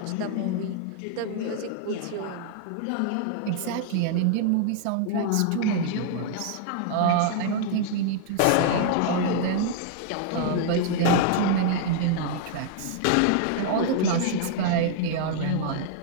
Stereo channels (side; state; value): both; different; correlation -0.01